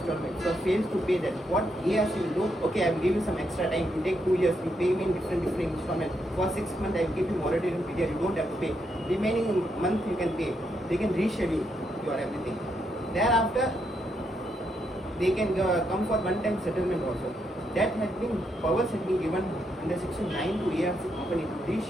so fails to pay that, what ARC will do, okay, I will give you some extra time, you take 2 years, you pay me in different installments. For 6 months I will give you moratorium period, you don't have to pay. Remaining month you can pay. They can reschedule your everything. Thereafter, they can come for one-time settlement also. That has been, powers has been given under section 9 to ARC company to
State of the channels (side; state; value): both; normal; correlation 0.79